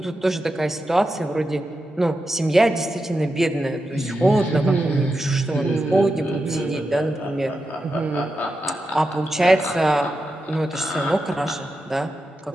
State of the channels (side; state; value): both; normal; correlation 0.89